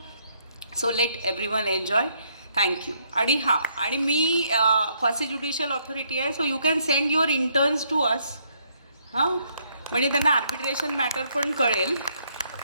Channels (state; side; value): inverted; both; correlation -0.71